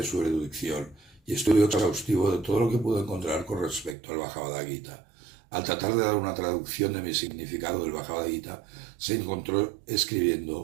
su erudición y estudio exhaustivo de todo lo que pudo encontrar con respecto al Bhagavad Gita. Al tratar de dar una traducción de mi significado del Bhagavad Gita, se encontró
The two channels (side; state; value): left; drops out; at 4.0 s